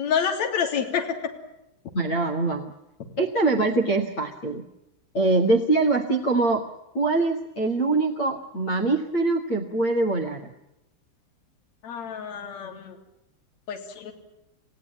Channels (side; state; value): right; late; 8.7 ms